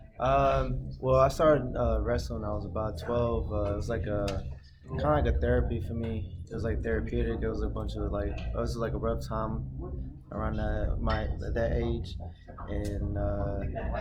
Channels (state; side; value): identical; both; correlation 1.00